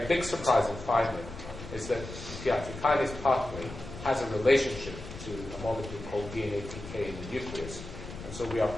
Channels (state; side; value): noise; left; rumble, 12 dB below the sound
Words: big surprising finding is that the PI3 kinase pathway has a relationship to a molecule called DNA-PK in the nucleus. And so we are